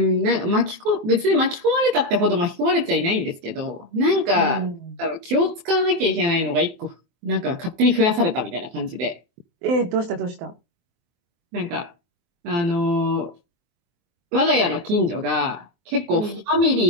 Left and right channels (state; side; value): late; left; 23 ms